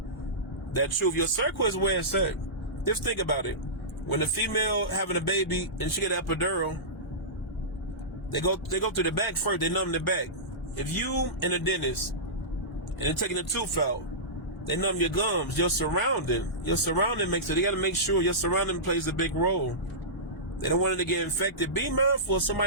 that truth. Your circle is where it's at. Just think about it. When the female having a baby and she get an epidural, they go through the back first. They numb the back. If you in a dentist and they're taking the tooth out, they numb your gums, your surrounding. Your surrounding makes it. They got to make sure your surrounding plays a big role. They don't want it to get infected. Be mindful of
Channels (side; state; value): both; normal; correlation -0.18